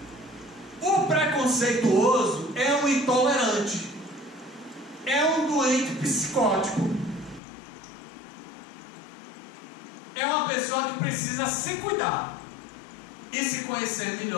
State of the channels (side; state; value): right; drops out; at 7.4 s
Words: o preconceituoso é um intolerante, é um doente psicótico, é uma pessoa que precisa se cuidar e se conhecer